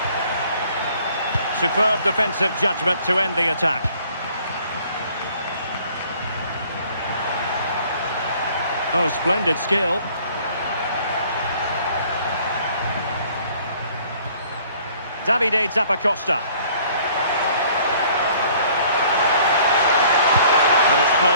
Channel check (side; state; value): both; inverted; correlation -0.56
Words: Superb defensive judgment to end the attack. Oh, splendid skill. Davide Zappacosta. And it's